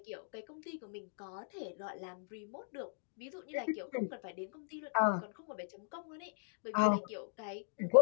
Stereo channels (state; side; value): silent; right; digital silence